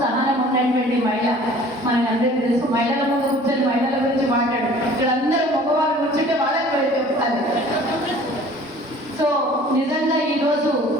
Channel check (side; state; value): both; normal; correlation 0.49